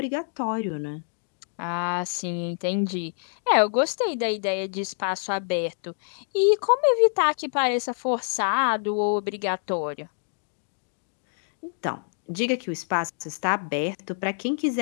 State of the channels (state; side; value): silent; right; 61 dB below the other